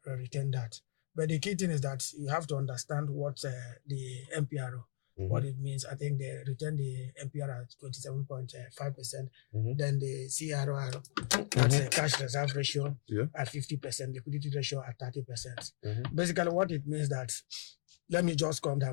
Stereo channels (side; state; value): right; silent; digital silence